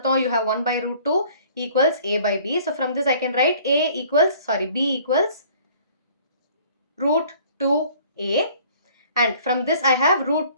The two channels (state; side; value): inverted; both; correlation -0.54